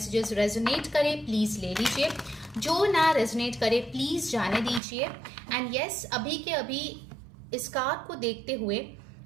रेजोनेट करे प्लीज ले लीजिए, जो ना रेजोनेट करे प्लीज जाने दीजिए। एंड यस, अभी के अभी इस कार्ड को देखते हुए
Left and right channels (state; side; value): drops out; left; at 4.8 s